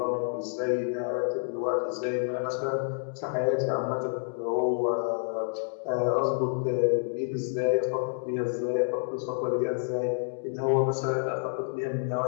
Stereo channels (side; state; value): right; silent; digital silence